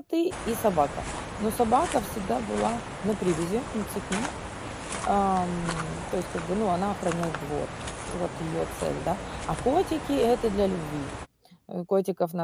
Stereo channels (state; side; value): identical; both; correlation 1.00